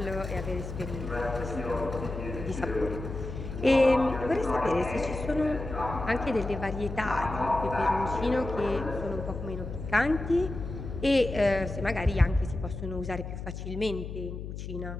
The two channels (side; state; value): left; noise; hum, 8 dB below the sound